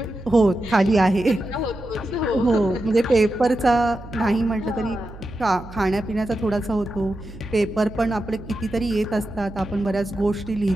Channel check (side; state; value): right; noise; hum, 16 dB below the sound